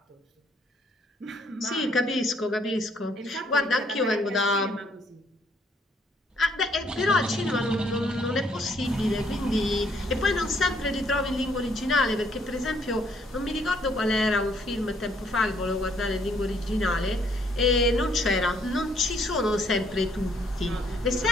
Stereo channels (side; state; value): both; normal; correlation 0.67